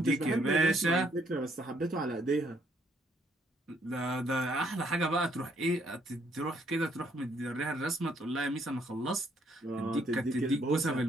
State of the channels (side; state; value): both; normal; correlation 0.69